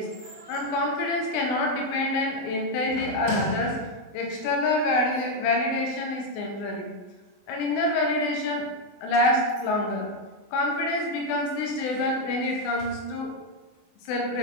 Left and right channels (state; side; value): late; right; 24 ms